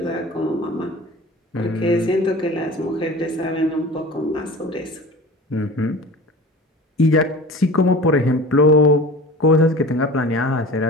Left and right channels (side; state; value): both; normal; correlation 0.38